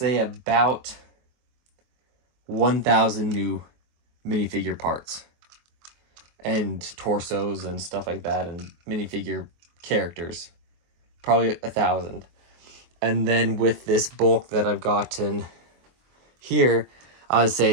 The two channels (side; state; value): left; late; 23 ms